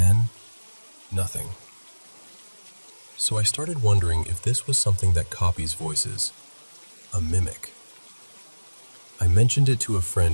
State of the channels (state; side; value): inverted; both; correlation -1.00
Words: nothing. So I started wondering if this was something that copies voices, a mimic. I mentioned it to a